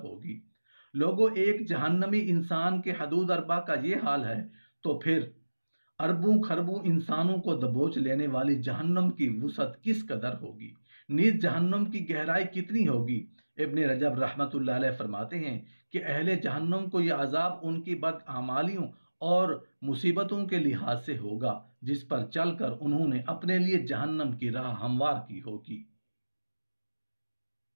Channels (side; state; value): both; inverted; correlation -1.00